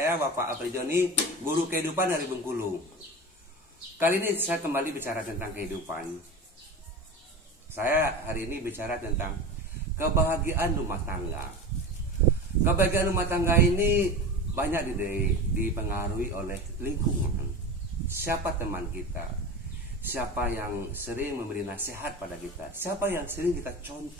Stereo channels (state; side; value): normal; both; correlation 0.29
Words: Bapak Apri Joni, guru kehidupan dari Bengkulu. Kali ini saya kembali bicara tentang kehidupan. Saya hari ini bicara tentang kebahagiaan rumah tangga. Kebahagiaan rumah tangga ini banyak dipengaruhi oleh lingkungan. Siapa teman kita? Siapa yang sering memberi nasihat pada kita? Siapa yang sering kita